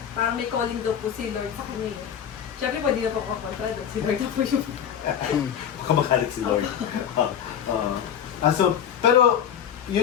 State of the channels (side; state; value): right; quieter; 8.9 dB